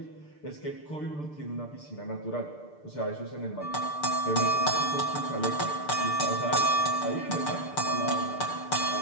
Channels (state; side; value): late; right; 6.7 ms